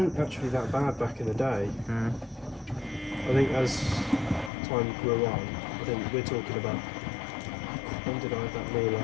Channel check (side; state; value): right; drops out; at 4.5 s